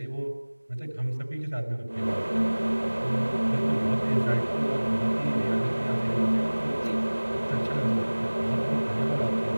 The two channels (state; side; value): inverted; both; correlation -1.00